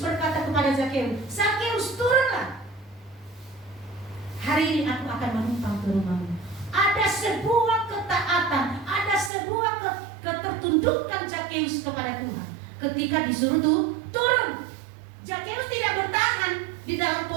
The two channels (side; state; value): left; drops out; at 9.3 s